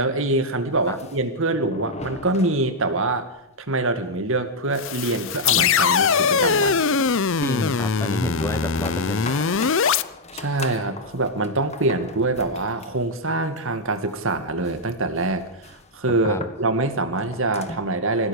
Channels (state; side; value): normal; both; correlation -0.04